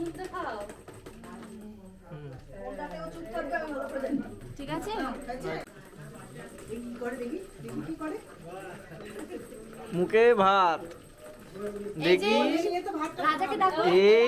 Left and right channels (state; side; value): identical; both; correlation 1.00